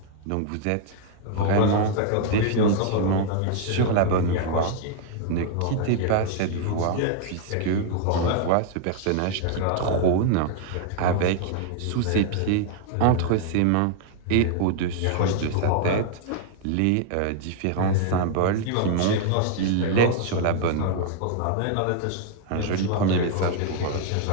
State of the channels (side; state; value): both; different; correlation 0.00